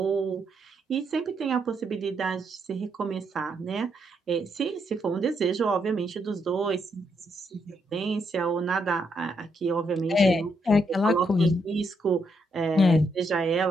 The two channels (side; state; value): both; normal; correlation 0.77